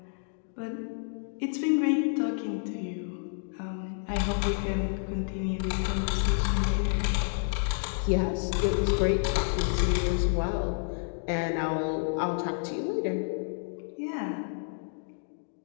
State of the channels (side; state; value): right; silent; digital silence